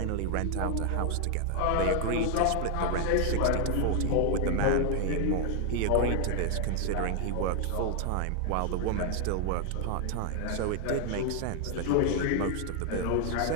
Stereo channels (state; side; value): different; both; correlation 0.00